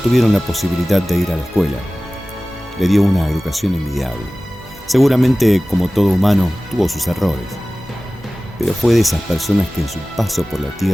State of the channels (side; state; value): both; normal; correlation 0.97